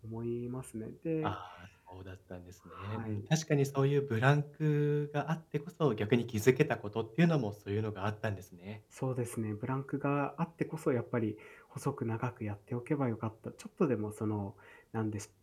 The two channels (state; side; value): identical; both; correlation 1.00